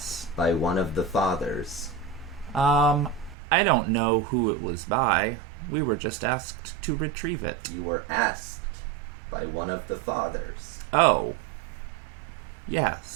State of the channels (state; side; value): drops out; left; at 3.4 s